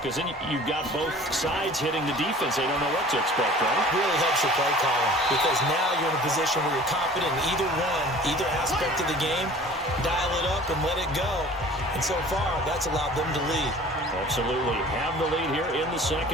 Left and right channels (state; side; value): normal; both; correlation 0.46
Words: then you've got both sides hitting the defense. They don't know what to expect, right? It really helps your play calling, because now you're in a position where you're confident in either aspect of the game. Dial it up and let it go. And so far, that's allowed them to lead. Absolutely. Have the lead here in the